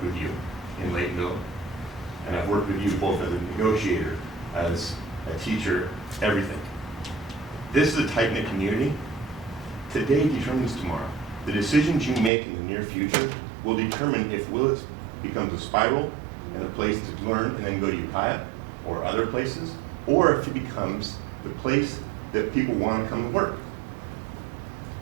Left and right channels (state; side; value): drops out; left; at 12.3 s